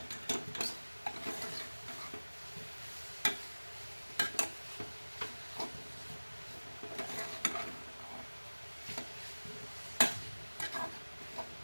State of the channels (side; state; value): both; inverted; correlation -1.00